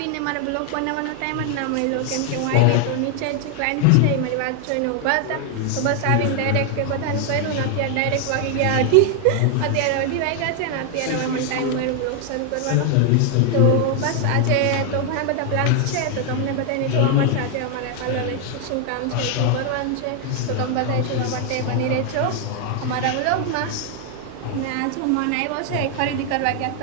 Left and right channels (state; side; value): different; both; correlation 0.00